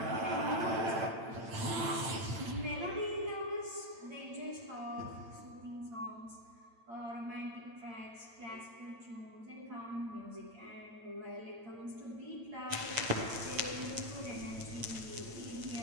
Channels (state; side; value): late; left; 8.8 ms